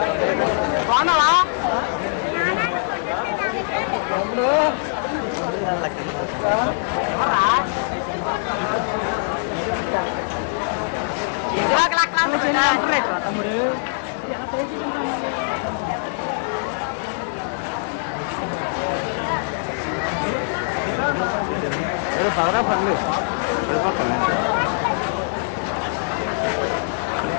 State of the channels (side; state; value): right; silent; digital silence